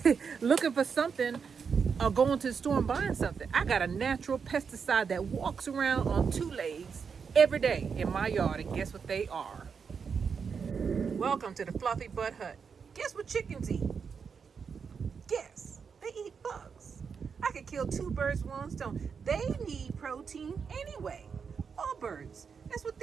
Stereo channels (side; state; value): left; quieter; 6.1 dB